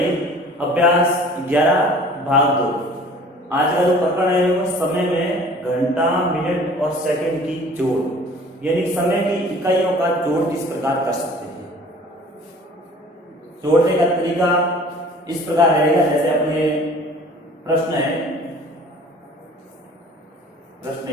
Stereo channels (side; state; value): both; normal; correlation 0.48